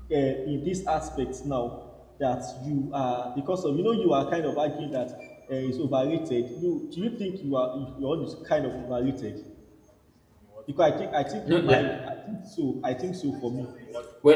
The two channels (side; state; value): both; identical; correlation 1.00